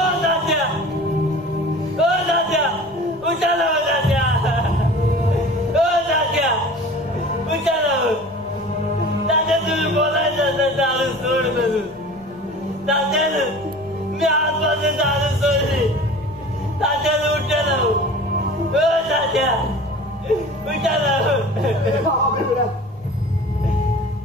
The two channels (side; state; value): left; noise; rumble, 24 dB below the sound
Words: तात्या ओ तात्या उठाला तात्या ओ तात्या उठाला तात्या तुम्ही बोलायचं दारू सोड करून तात्यानं मी आजपासून दारू सोडली तात्यानं उठाला ओ तात्या उठाला.